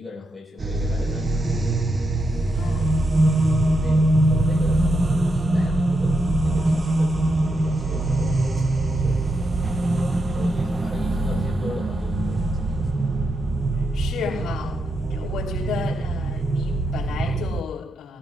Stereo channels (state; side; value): normal; both; correlation 0.83